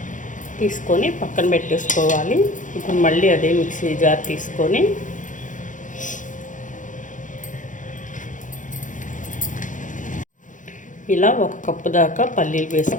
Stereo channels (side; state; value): right; late; 0.37 ms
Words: తీసుకొని పక్కన పెట్టేసుకోవాలి. ఇప్పుడు మళ్ళీ అదే మిక్సీ జార్ తీసుకొని ఇలా ఒక కప్పు దాకా పల్లీలు